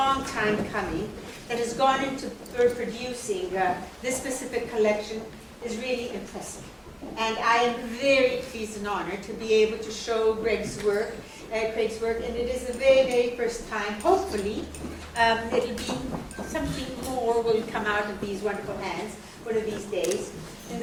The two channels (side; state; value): both; identical; correlation 1.00